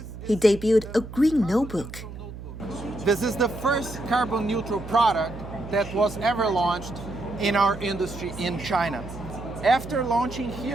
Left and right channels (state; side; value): noise; right; hum, 12 dB below the sound